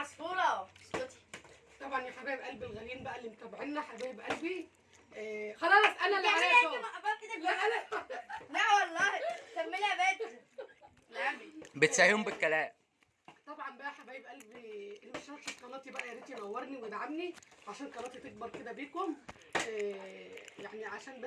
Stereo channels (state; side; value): identical; both; correlation 1.00